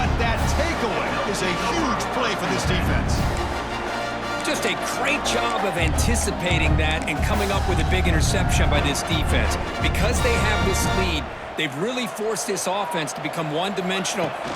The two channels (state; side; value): identical; both; correlation 1.00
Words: that takeaway is a huge play for this defense. Just a great job of anticipating that and coming up with a big interception by this defense. Because they have this lead, they've really forced this offense to become one-dimensional.